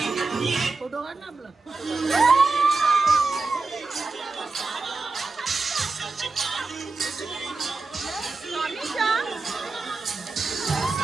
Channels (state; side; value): quieter; left; 3.8 dB